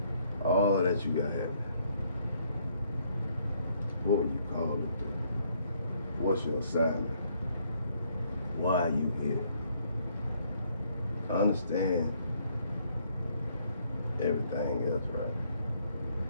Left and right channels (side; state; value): both; inverted; correlation -0.68